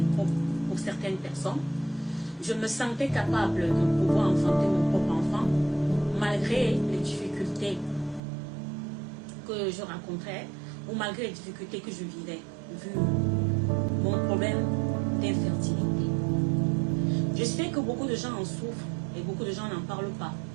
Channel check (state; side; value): drops out; left; at 8.2 s